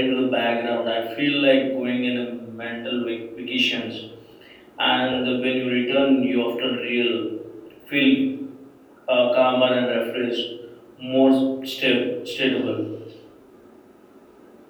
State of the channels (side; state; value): both; identical; correlation 1.00